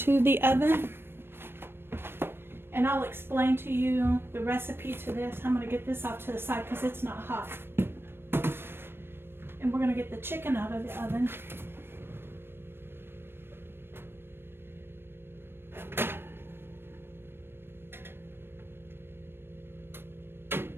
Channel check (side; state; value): left; late; 0.11 ms